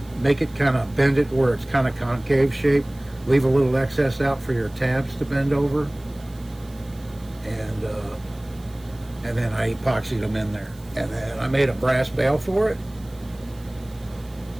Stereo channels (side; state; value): right; noise; hiss, 26 dB below the sound